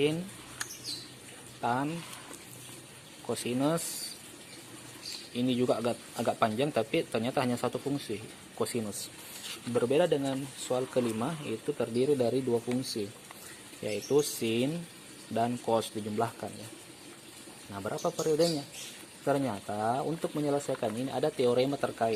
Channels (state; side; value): identical; both; correlation 1.00